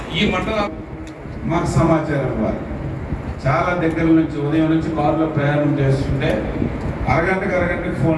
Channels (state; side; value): identical; both; correlation 1.00